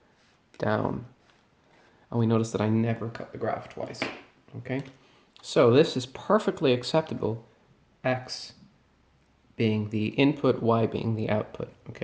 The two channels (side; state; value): both; identical; correlation 1.00